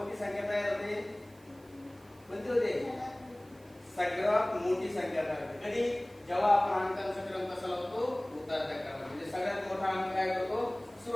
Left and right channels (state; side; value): noise; right; hiss, 29 dB below the sound